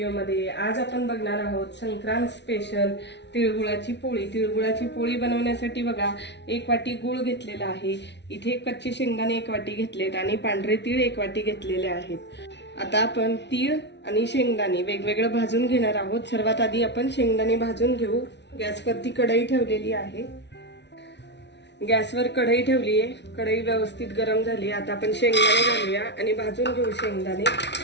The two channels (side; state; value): right; late; 0.50 ms